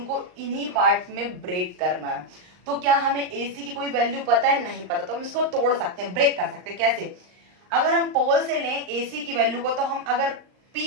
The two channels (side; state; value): left; late; 39 ms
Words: इन्हीं पार्ट में ब्रेक करना है। तो क्या हमें AC की कोई वैल्यू पता है? नहीं पता। तो हम इसको तोड़ सकते हैं, ब्रेक कर सकते हैं। कैसे? अगर हम पोल से लें AC की वैल्यू को, तो हम अगर